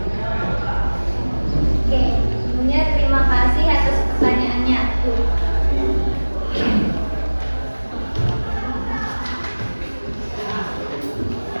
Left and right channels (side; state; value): both; inverted; correlation -1.00